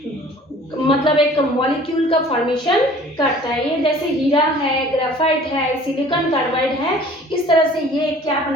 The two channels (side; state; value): both; normal; correlation 0.50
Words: मतलब एक मॉलिक्यूल का फॉर्मेशन करता है। ये जैसे हीरा है, ग्रेफाइट है, सिलिकॉन कार्बाइड है, इस तरह से ये क्या